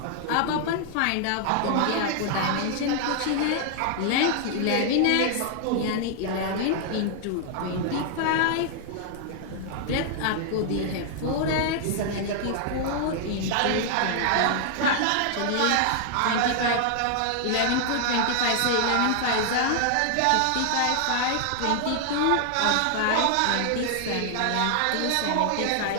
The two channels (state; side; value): different; both; correlation 0.00